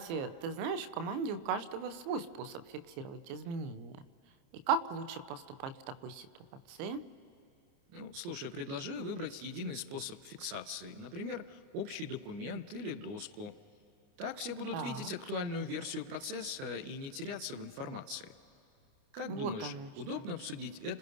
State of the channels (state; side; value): late; left; 29 ms